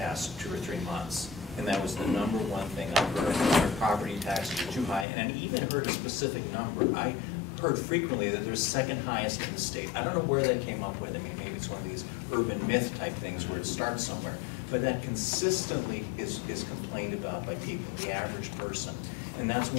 2 or 3 months, and that was the number one thing I heard. Their property taxes were too high, and I even heard a specific number. I heard frequently that they're second highest in the state. I don't know where they came up with it. I mean, maybe it's one of these urban myth type things where it starts somewhere. But that consistently is complained about by people, the average person. And that's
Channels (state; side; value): drops out; right; at 5.1 s